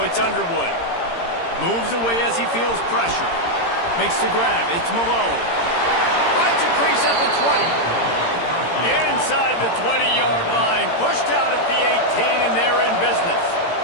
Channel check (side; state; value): right; late; 17 ms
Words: it's Underwood. Moves away as he feels pressure. Makes the grab, it's Malone. Finds a crease at the 20. Inside the 20-yard line. Pushed out at the 18, and they're in business.